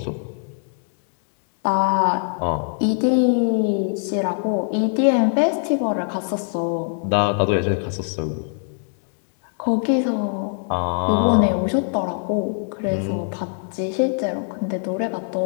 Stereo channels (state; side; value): silent; right; 64 dB below the other